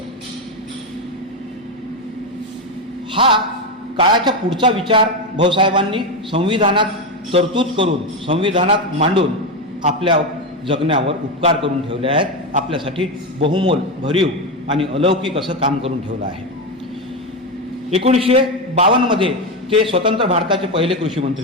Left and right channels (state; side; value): normal; both; correlation 0.11